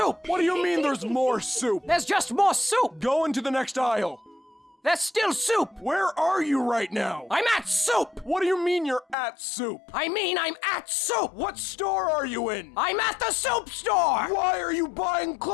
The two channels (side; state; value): right; drops out; at 9.2 s